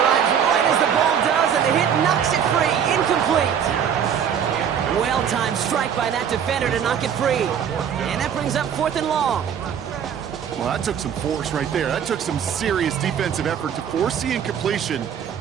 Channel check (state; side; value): quieter; left; 8.2 dB